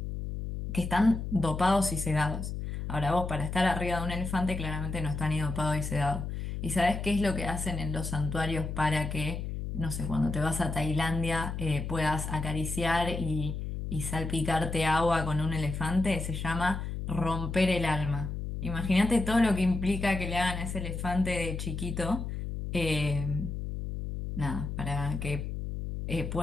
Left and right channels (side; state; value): left; noise; hum, 5 dB below the sound